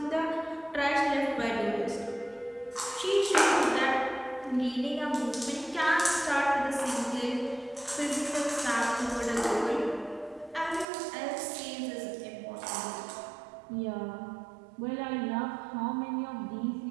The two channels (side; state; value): left; drops out; at 10.9 s